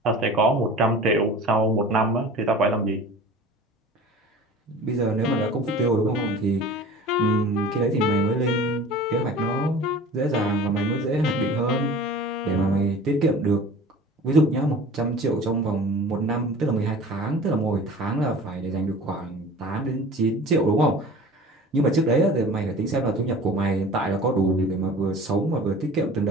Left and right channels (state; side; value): normal; both; correlation 0.41